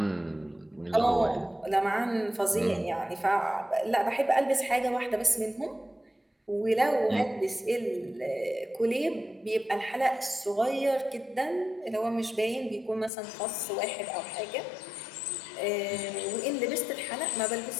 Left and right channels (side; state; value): right; drops out; at 13.1 s